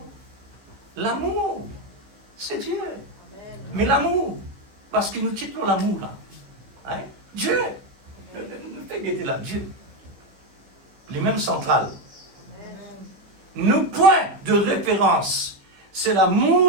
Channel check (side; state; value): left; late; 15 ms